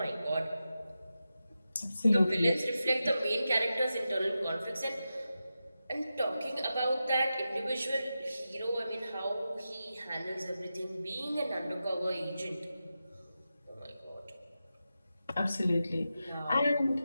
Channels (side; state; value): both; inverted; correlation -0.91